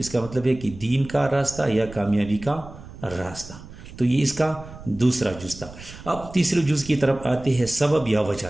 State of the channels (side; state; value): right; noise; rumble, 16 dB below the sound